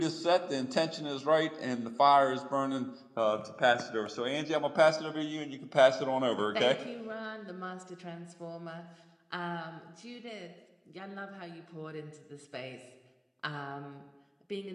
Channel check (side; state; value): both; identical; correlation 1.00